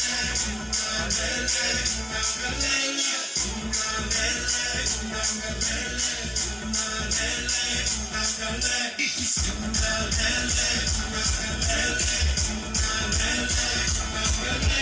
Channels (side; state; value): both; identical; correlation 1.00